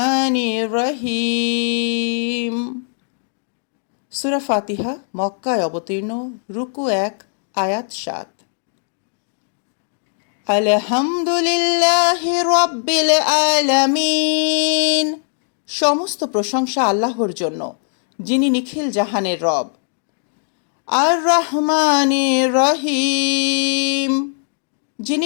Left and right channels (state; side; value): silent; right; digital silence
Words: الرحيم সূরা ফাতিহা মক্কায় অবতীর্ণ রুকু 1 আয়াত 7 আলহামদুলিল্লাহি রাব্বিল আলামিন সমস্ত প্রশংসা আল্লাহর জন্য যিনি নিখিল জাহানের রব আর রহমানির রহিম